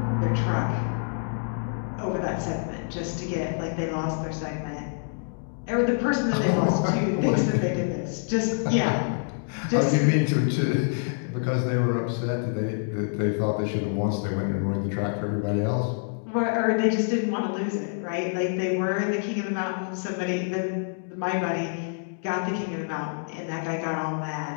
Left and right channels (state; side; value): silent; right; digital silence